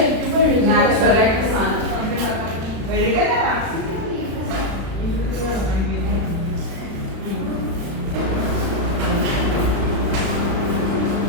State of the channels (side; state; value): left; late; 36 ms